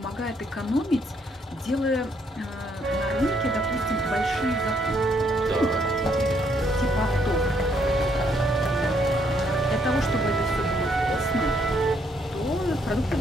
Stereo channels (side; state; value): both; normal; correlation 0.71